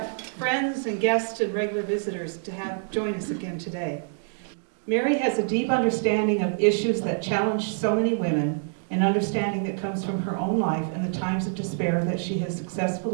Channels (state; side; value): silent; left; digital silence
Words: friends and guests and regular visitors to join us again today. Mary has a deep understanding of issues that challenge so many women, an understanding that comes from her own life and the times of despair that she has